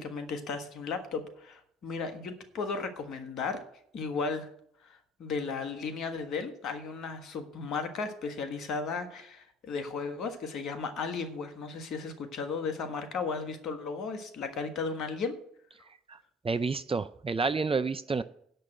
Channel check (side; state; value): both; normal; correlation 0.47